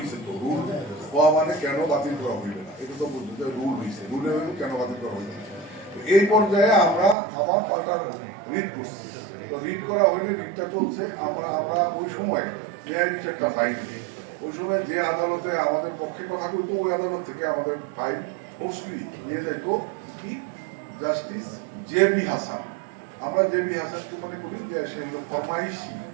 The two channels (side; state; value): left; drops out; at 7.2 s